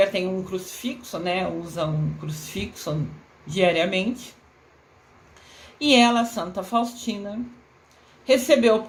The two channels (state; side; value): identical; both; correlation 1.00